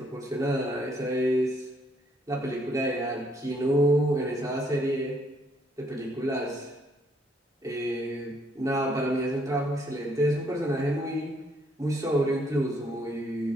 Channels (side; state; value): both; normal; correlation 0.69